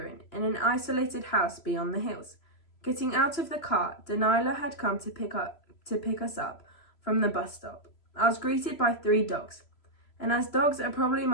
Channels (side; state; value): right; late; 3.0 ms